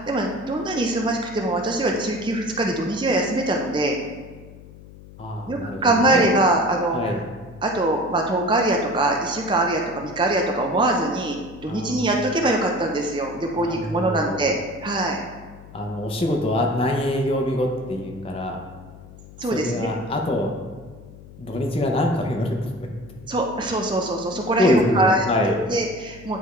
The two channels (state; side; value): noise; left; hum, 19 dB below the sound